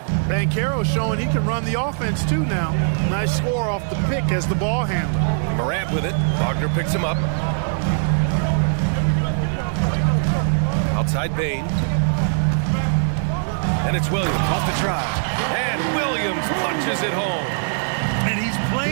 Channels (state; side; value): silent; left; digital silence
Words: Banchero showing he can run the offense too now. Nice score off the pick as the ball handler. Morant with it. Wagner picks him up. Outside Bain. And it's Williams off the try. And Williams punches it home. And he's